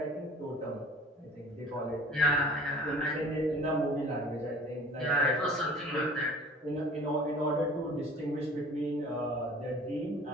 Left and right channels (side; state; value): both; normal; correlation 0.47